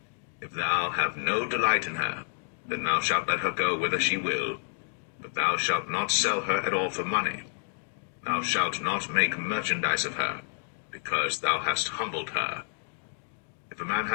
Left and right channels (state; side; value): silent; right; digital silence